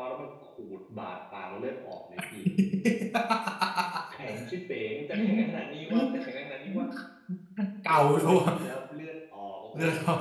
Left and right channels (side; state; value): both; identical; correlation 1.00